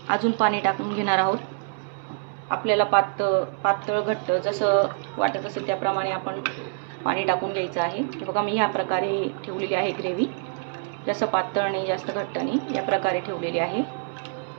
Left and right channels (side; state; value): left; silent; 61 dB below the other